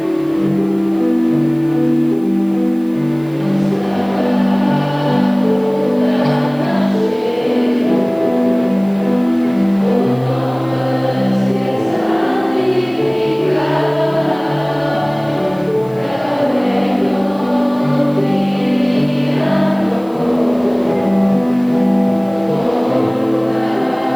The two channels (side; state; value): right; noise; hiss, 28 dB below the sound